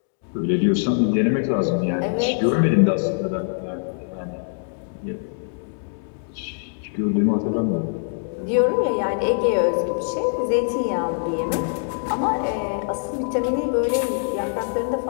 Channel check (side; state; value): right; silent; digital silence